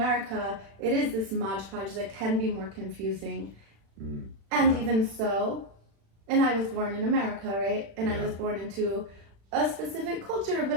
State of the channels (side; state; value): left; late; 36 ms